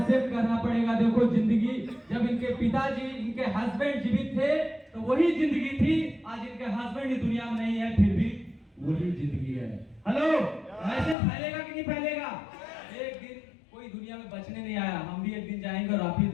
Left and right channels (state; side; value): drops out; right; at 11.2 s